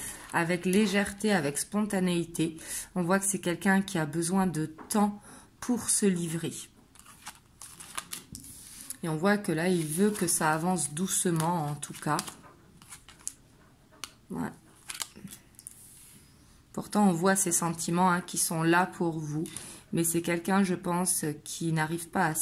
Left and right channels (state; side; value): identical; both; correlation 1.00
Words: avec légèreté, avec spontanéité. On voit que c'est quelqu'un qui a besoin de temps pour se livrer. Et on voit que là, il veut que ça avance doucement, en tout cas. Ouais. Pourtant, on voit ces sentiments, hein, qui sont là pour vous. Mais c'est quelqu'un, je pense, qui n'arrive pas à